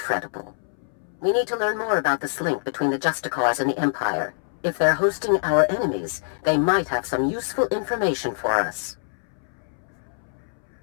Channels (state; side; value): silent; right; 62 dB below the other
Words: We need to learn more about this link between the Justicars and the Empire. If they're hosting our enemies, they might have some useful information for us.